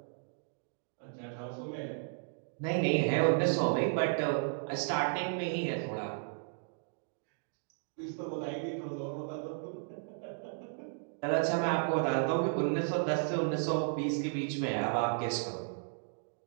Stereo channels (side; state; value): left; silent; digital silence